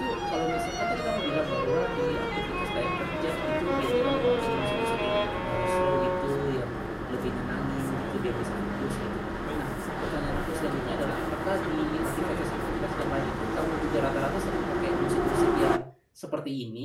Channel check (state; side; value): identical; both; correlation 1.00